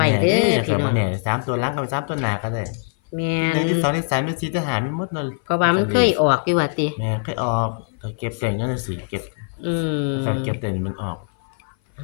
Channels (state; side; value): silent; right; 58 dB below the other